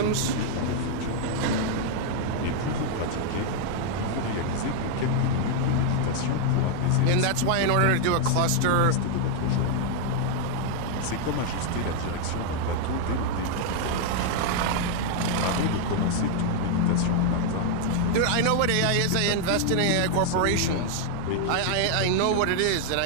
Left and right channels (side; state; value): both; different; correlation 0.00